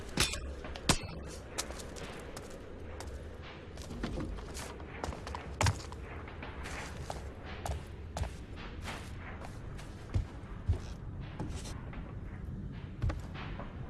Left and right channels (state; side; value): identical; both; correlation 1.00